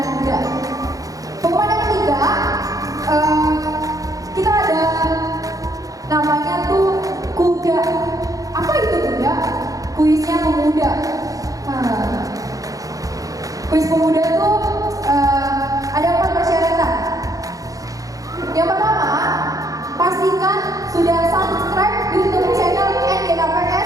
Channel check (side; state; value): left; late; 0.17 ms